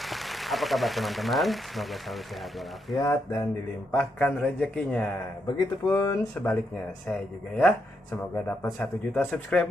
Apa kabar teman-teman? Semoga selalu sehat walafiat dan dilimpahkan rezekinya. Begitupun sebaliknya, saya juga ya. Semoga dapat 1 juta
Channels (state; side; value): normal; both; correlation 0.80